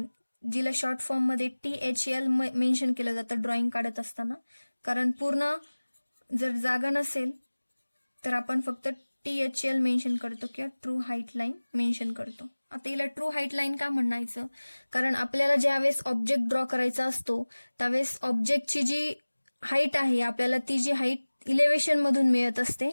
जिला शॉर्ट फॉर्म मध्ये THL मेन्शन केलं जातं ड्रॉइंग काढत असताना. कारण पूर्ण जर जागा नसेल तर आपण फक्त THL मेन्शन करतो किंवा ट्रू हाईट लाईन मेन्शन करतो. आता हिला ट्रू हाईट लाईन का म्हणायचं, कारण आपल्याला ज्यावेळेस ऑब्जेक्ट ड्रॉ करायचा असतो त्यावेळेस ऑब्जेक्टची जी हाईट आहे आपल्याला ती जी हाईट इलेव्हेशन मधून मिळत असते.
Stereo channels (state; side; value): inverted; both; correlation -1.00